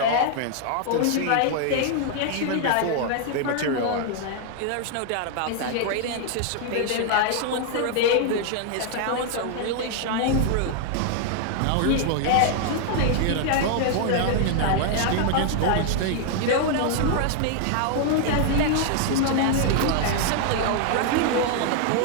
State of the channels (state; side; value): different; both; correlation 0.00